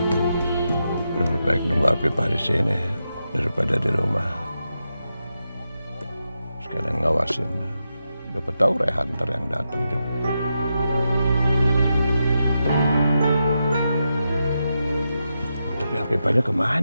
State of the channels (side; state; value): both; inverted; correlation -0.87